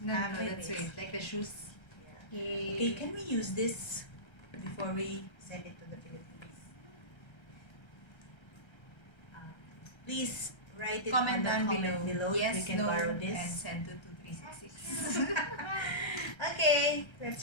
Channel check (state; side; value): late; right; 1.3 ms